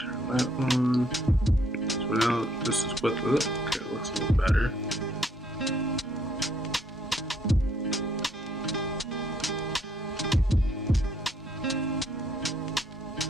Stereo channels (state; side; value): normal; both; correlation 0.68